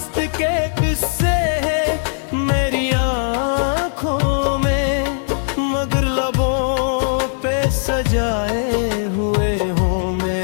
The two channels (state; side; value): silent; right; 67 dB below the other